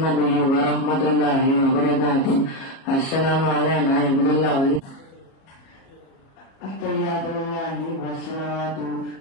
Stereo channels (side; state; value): right; late; 37 ms